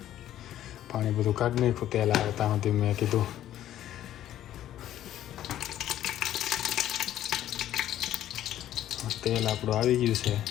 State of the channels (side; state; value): right; quieter; 12.2 dB